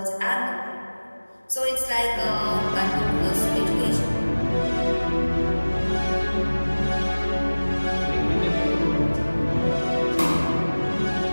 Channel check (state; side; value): inverted; both; correlation -1.00